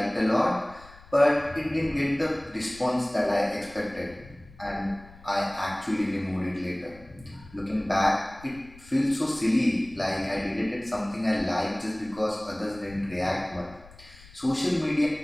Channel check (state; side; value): noise; left; rumble, 22 dB below the sound